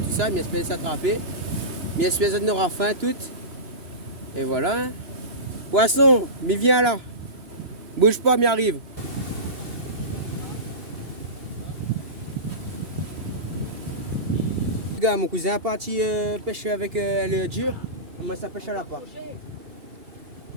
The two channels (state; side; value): late; left; 2.9 ms